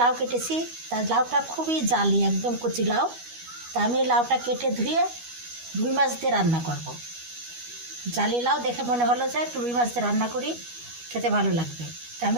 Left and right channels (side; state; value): left; late; 12 ms